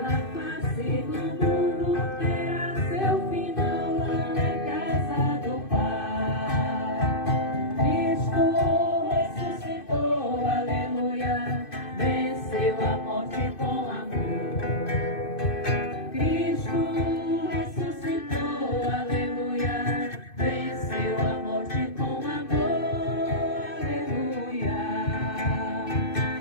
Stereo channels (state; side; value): late; right; 2.6 ms